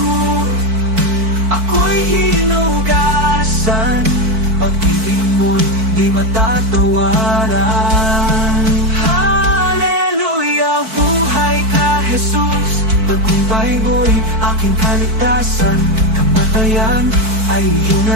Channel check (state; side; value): late; left; 4.5 ms